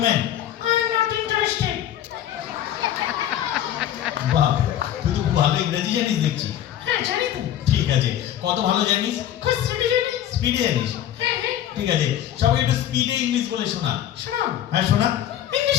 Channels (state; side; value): quieter; right; 11.4 dB